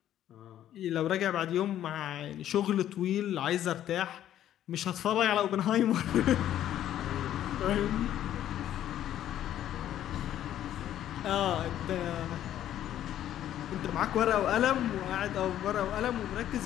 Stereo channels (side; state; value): right; quieter; 11.6 dB